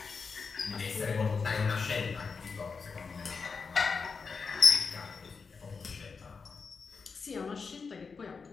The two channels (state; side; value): quieter; right; 5.1 dB